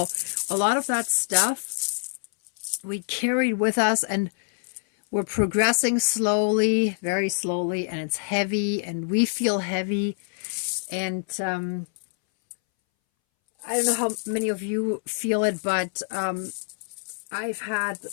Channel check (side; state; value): right; silent; 61 dB below the other